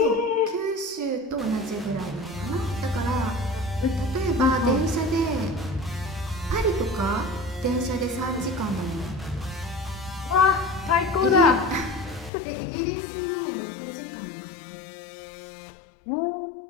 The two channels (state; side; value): drops out; right; at 12.3 s